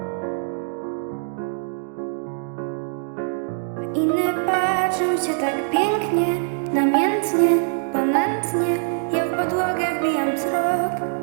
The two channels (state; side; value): silent; left; digital silence